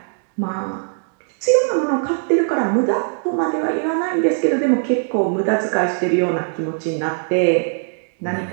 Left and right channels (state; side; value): silent; left; digital silence